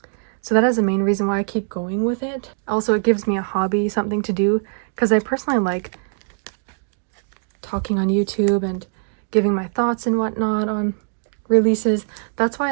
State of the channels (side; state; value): left; silent; digital silence